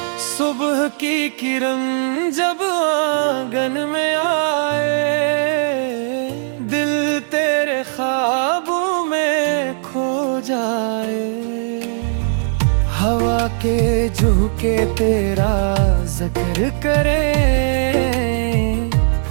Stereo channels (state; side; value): silent; left; digital silence